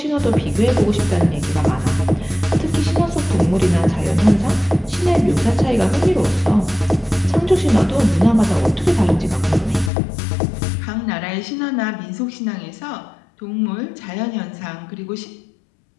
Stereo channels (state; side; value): drops out; right; at 9.9 s